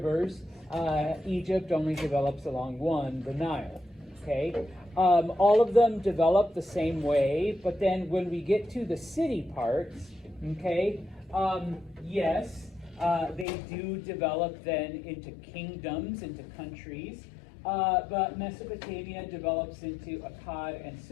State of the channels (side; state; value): right; drops out; at 13.5 s